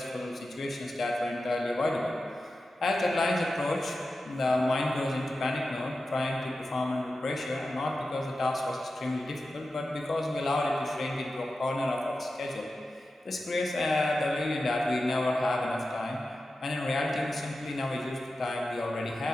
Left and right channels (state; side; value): normal; both; correlation 0.93